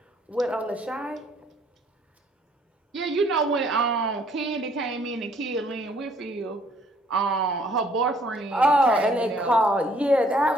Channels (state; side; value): normal; both; correlation 0.62